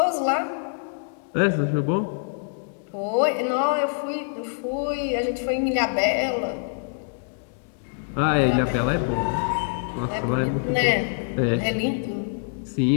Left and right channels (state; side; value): silent; right; digital silence